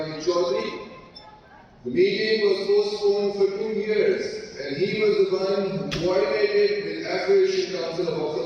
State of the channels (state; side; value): identical; both; correlation 1.00